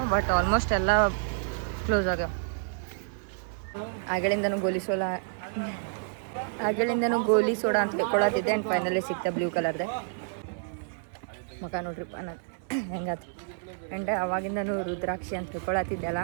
ಬಟ್ ಆಲ್ಮೋಸ್ಟ್ ಎಲ್ಲ ಕ್ಲೋಸ್ ಆಗ್ಯಾವ. ಆಗಳಿಂದನೂ ಗೋಲಿ ಸೋಡಾ ಅಂತ ಕೊಡತ್ತಿದ್ದೆ. ಆ್ಯಂಡ್ ಫೈನಲಿ ಸಿಕ್ತ ಬ್ಲೂ ಕಲರ್ದೆ ಮಗ ನೋಡ್ರಿಪ್ಪ ನಾನು ಹೆಂಗಾತು. ಆ್ಯಂಡ್ ಅವಾಗಿಂದನೂ ರುದ್ರಾಕ್ಷಿ ಅಂತ ತಿಳ್ಕೊಳತ್ತಿದ್ದೆ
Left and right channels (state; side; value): silent; left; 58 dB below the other